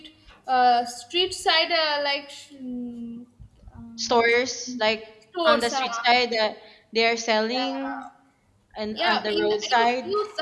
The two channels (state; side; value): identical; both; correlation 1.00